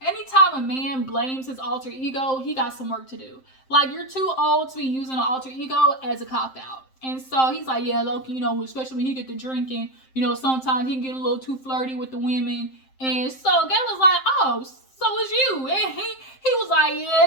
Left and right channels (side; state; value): right; late; 7.6 ms